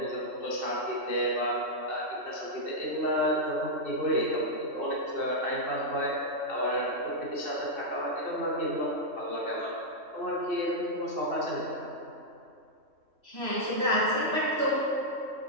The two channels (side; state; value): left; late; 3.1 ms